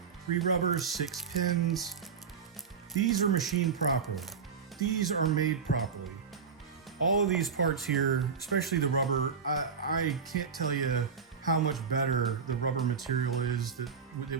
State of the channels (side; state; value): left; quieter; 6.1 dB